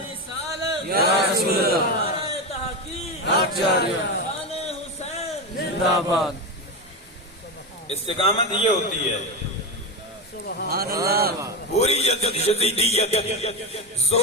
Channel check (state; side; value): normal; both; correlation 0.15